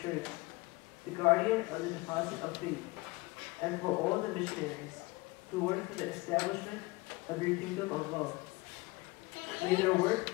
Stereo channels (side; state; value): right; quieter; 23.1 dB